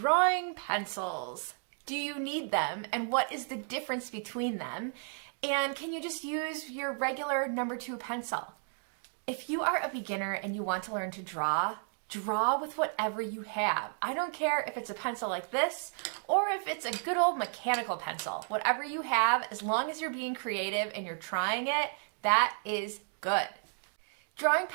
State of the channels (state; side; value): silent; left; 56 dB below the other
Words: pencils. Do you need them, and what is the difference between them? And can you just use your regular number 2 pencil? If you are a beginner and you want to learn to draw, draw with whatever you have. I don't care if it's a pencil like this or if it's a good old mechanical pencil. Whatever you have, as long as you're being creative and you're trying it, that is good. Drawing